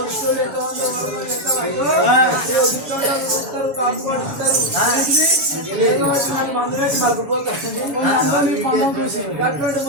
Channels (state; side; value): late; left; 7.2 ms